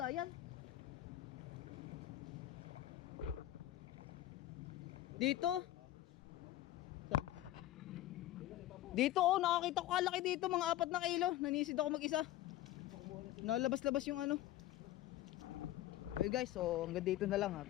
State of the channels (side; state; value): right; quieter; 14.4 dB